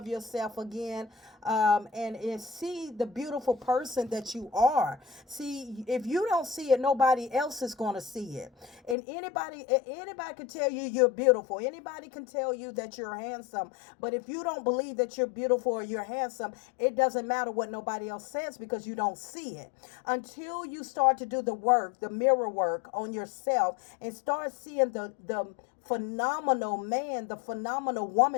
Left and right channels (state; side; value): drops out; right; at 9.0 s